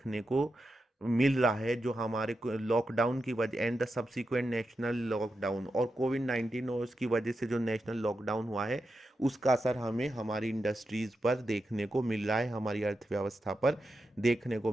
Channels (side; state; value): both; normal; correlation 0.88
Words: को मिल रहा है, जो हमारे लॉकडाउन की वजह and the subsequent national lockdown, और कोविड 19 और उसकी वजह से जो नेशनल लॉकडाउन हुआ है उसका असर हमें हमारी इंडस्ट्रीज़ पर देखने को मिल रहा है, हमारी अर्थव्यवस्था पर देखने को